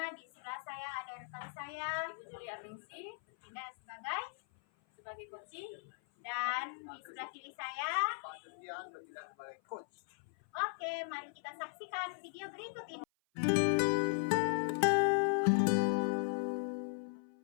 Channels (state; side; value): silent; right; 52 dB below the other